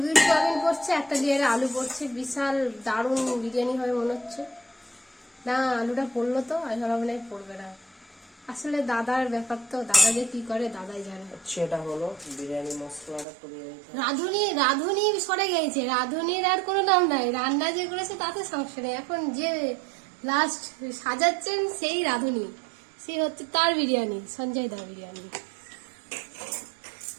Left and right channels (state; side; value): drops out; left; at 13.2 s